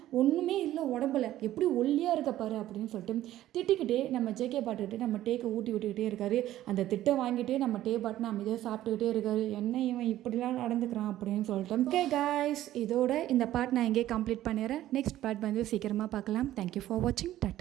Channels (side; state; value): left; quieter; 13.7 dB